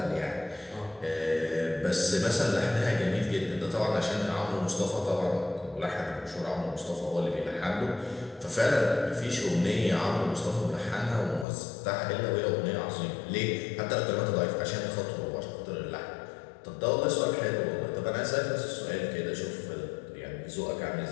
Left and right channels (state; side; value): drops out; right; at 11.5 s